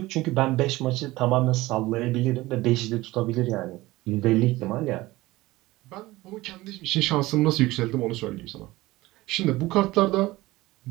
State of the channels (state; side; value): quieter; left; 19.0 dB